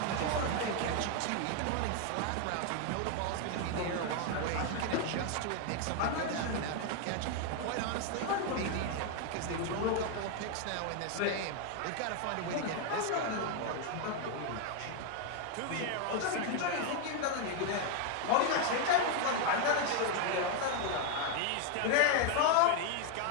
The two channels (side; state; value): both; different; correlation 0.01